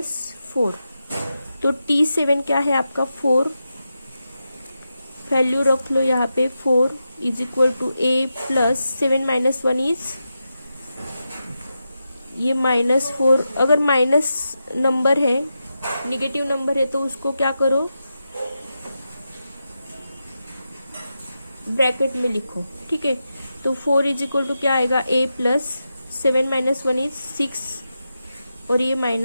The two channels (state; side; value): inverted; both; correlation -0.88